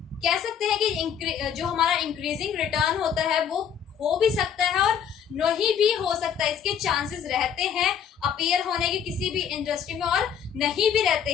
कह सकते हैं कि जो हमारा इंक्रीजिंग रिटर्न होता है वो हो भी सकता है और नहीं भी हो सकता है, इसके चांसेस रहते हैं अपीयर होने के किसी भी इंडस्ट्री में और नहीं भी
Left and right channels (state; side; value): quieter; right; 8.1 dB